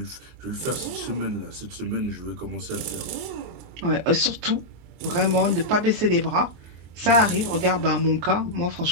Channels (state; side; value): late; left; 24 ms